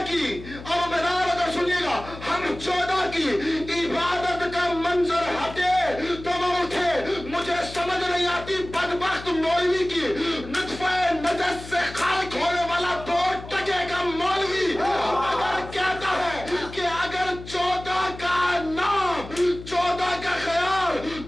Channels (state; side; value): noise; left; hum, 14 dB below the sound